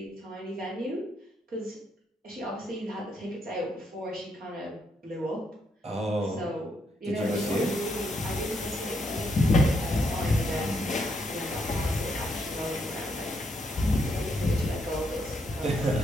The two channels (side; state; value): both; normal; correlation 0.77